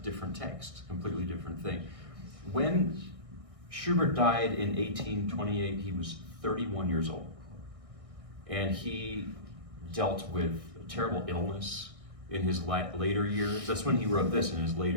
text, completely different thing. When Schubert died in 1828, he was 31 years old. And he dealt with a terrible illness in his later years. That's when he wrote this, in his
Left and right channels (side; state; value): left; late; 1.6 ms